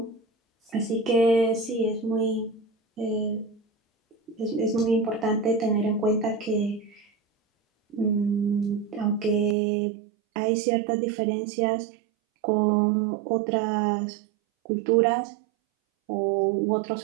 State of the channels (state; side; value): drops out; left; at 9.6 s